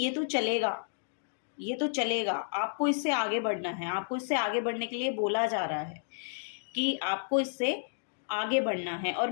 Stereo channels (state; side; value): silent; right; digital silence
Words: तो चलेगा, ये तो चलेगा, आपको इससे आगे बढ़ना है, आपको इससे आगे बढ़ने के लिए बोला जा रहा है कि आपको इससे आगे बढ़ना है। और